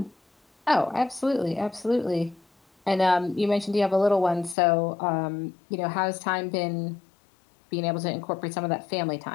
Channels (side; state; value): right; drops out; at 4.5 s